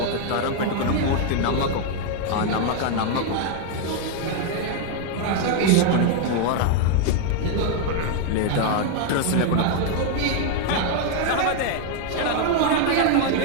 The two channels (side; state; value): both; different; correlation 0.00